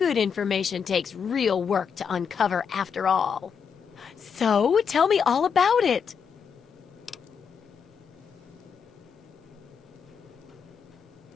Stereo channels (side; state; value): right; quieter; 6.7 dB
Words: information takes real work to uncover after all. So, tell me all about it.